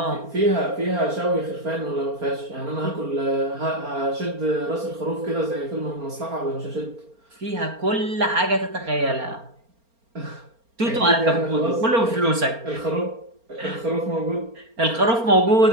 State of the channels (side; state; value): left; late; 4.3 ms